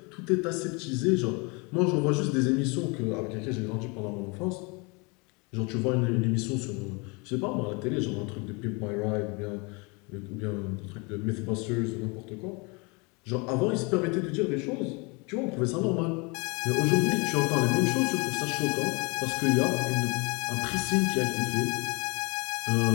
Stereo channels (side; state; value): right; quieter; 29.7 dB